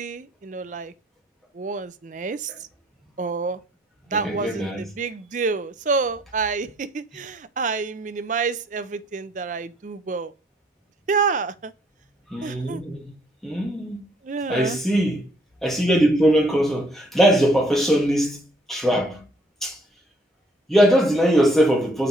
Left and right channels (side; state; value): both; normal; correlation 0.64